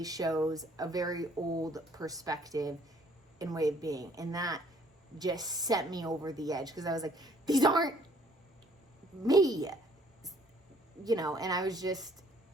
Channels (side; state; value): both; normal; correlation 0.61